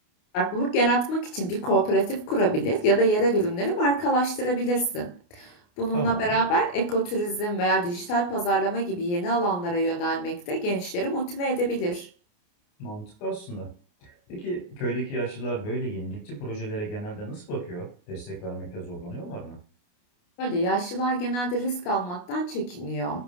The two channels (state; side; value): late; right; 29 ms